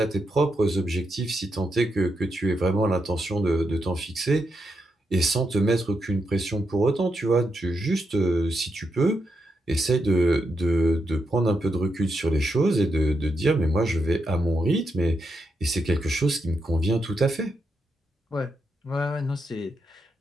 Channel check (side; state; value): both; normal; correlation 0.83